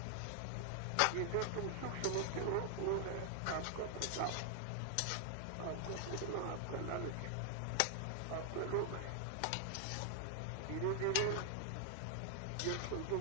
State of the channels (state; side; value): different; both; correlation 0.00